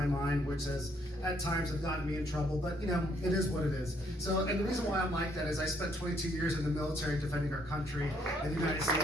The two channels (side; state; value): both; normal; correlation 0.69